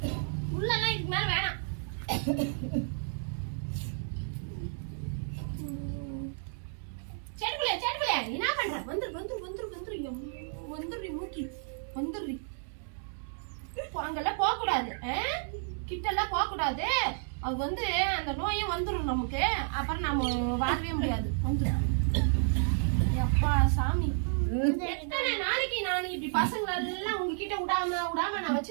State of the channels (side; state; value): left; silent; digital silence